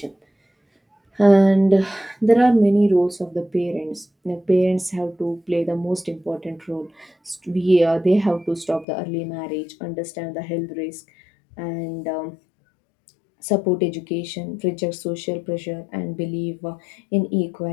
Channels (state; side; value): drops out; right; at 8.8 s